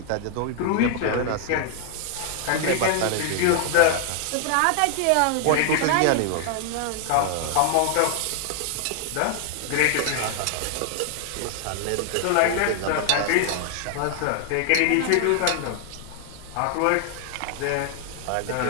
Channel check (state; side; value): different; both; correlation 0.00